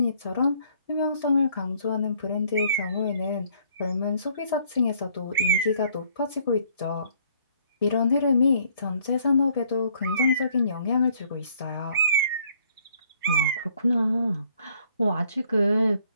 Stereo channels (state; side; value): inverted; both; correlation -0.63